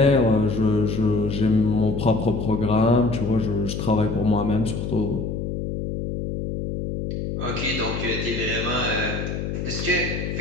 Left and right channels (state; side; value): noise; left; hum, 4 dB below the sound